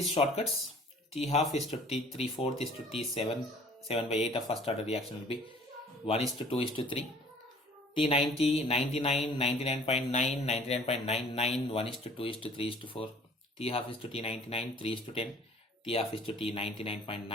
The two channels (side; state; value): both; normal; correlation 0.52